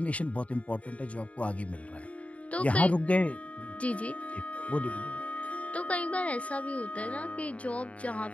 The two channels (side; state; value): right; late; 0.066 ms